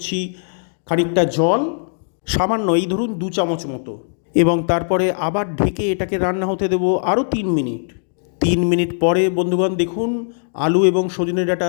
খানিকটা জল, সামান্য, এই ধরুন 2 চামচ মতো, এবং তারপরে আবার ঢেকে এটাকে রান্না হতে দেব আরও 3 মিনিট। 3 মিনিট পরে বন্ধুগণ দেখুন আলু এবং সজনে ডাঁটা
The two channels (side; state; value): right; silent; digital silence